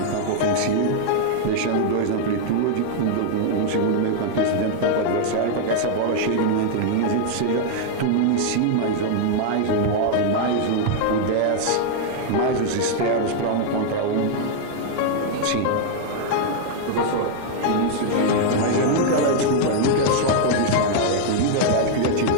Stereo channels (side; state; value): both; different; correlation -0.01